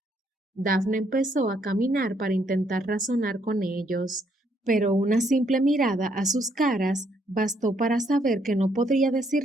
Daphne empezó a caminar para intentar razonar con ellos, pero una simple mirada a sus caras bastó para saber que no podría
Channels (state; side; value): normal; both; correlation 0.71